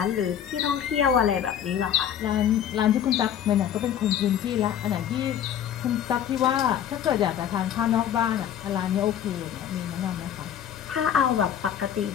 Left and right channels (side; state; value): right; quieter; 9.7 dB